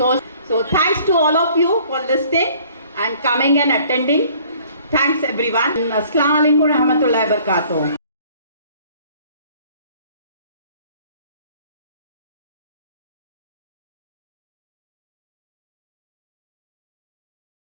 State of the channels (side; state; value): both; inverted; correlation -0.55